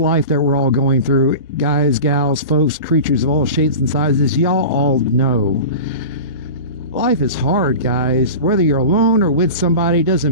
that we're all going through, guys, gals, folks, creatures of all shapes and sizes, y'all all know. Life is hard, guys. Whether you're alone or with somebody,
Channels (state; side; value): inverted; both; correlation -0.32